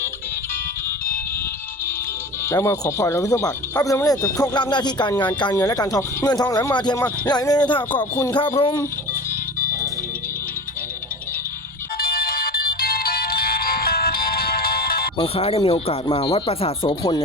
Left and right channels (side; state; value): both; normal; correlation 0.35